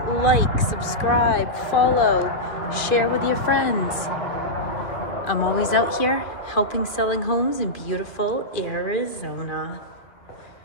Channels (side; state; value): right; late; 2.5 ms